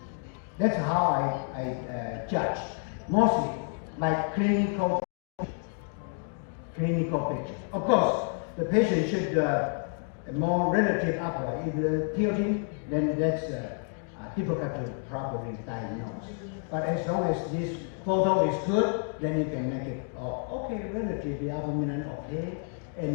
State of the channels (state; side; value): silent; right; 56 dB below the other